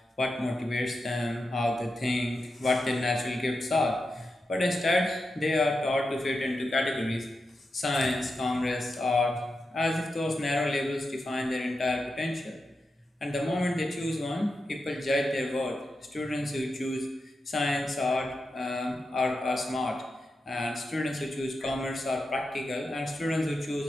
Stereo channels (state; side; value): normal; both; correlation 0.89